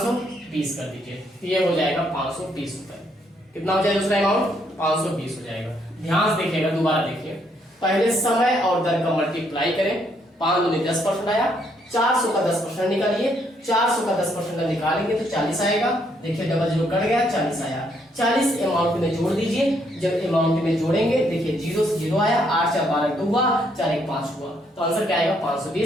कर दीजिए, तो ये हो जाएगा 520 रुपए। कितना हो जाएगा उसका अमाउंट, 520 हो जाएगा। ध्यान से देखिएगा, दोबारा देखिए, पहले समय और दर का मल्टीप्लाई करें, 5 दूनी 10% आया, 400 का 10% निकालिए, 400 का 10% निकालेंगे तो 40 आएगा। देखिए डबल जीरो कट गया, 40 आया। 40 अमाउंट में जोड़ दीजिए, जब अमाउंट में जोड़ेंगे देखिए जीरो से जीरो आया, 8 4 12 2 हुआ, 4 1 5 हुआ, तो आंसर क्या आएगा,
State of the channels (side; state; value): both; normal; correlation 0.72